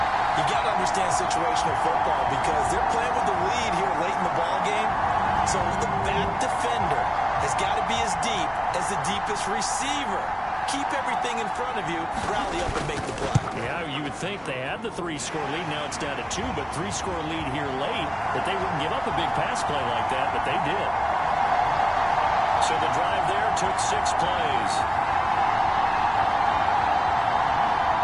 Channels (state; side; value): identical; both; correlation 1.00